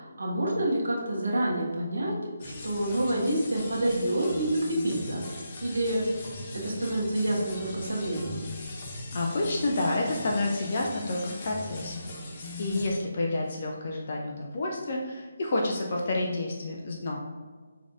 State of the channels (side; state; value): both; inverted; correlation -0.82